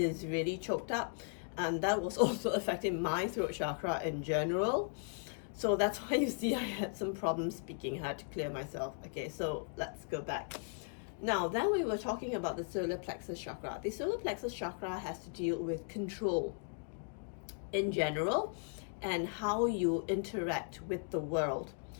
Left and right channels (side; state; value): right; silent; 53 dB below the other